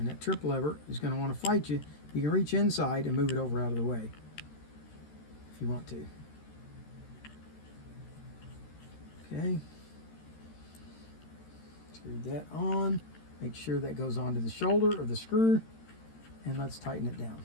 that trip lever is going to want to fight you. You can reach inside and move it over out of the way if you want to. Okay. Screw that on. Make sure that goes onto the shoulder of the screw. And let's tighten it down.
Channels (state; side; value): late; right; 13 ms